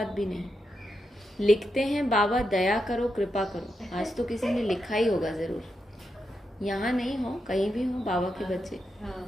भी नहीं। लिखते हैं बाबा दया करो कृपा करो। आज तो किसी ने लिखा ही होगा जरूर, यहाँ नहीं हो कहीं भी हो बाबा के बच्चे।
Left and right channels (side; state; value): both; normal; correlation 0.86